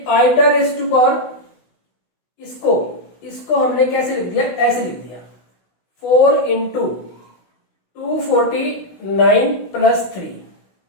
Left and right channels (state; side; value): late; right; 16 ms